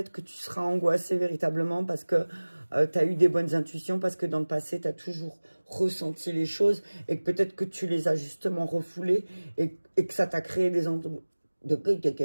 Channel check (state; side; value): inverted; both; correlation -1.00